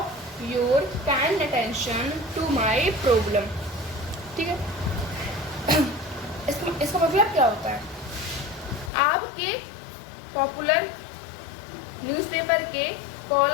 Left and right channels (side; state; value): right; drops out; at 8.9 s